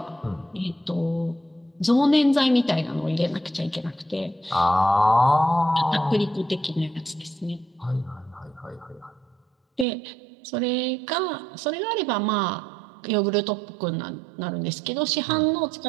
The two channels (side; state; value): left; drops out; at 9.9 s